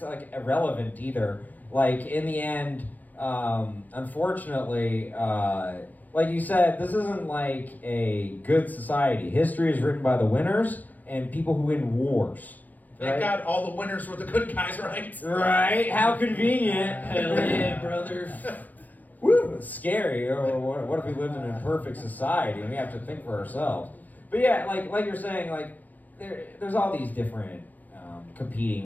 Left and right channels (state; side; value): late; right; 0.082 ms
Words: like, irrelevant either. Like, in the end, unfortunately, like you said, this isn't like a good society. History is written by the winners and people who win wars. Thank God all the winners were the good guys, right? Right? How convenient. Hell yeah, brother. Woo, it's scary. Or what if we lived in a perfect society and we have to think for ourselves? But yeah, like you're saying, like there's all these different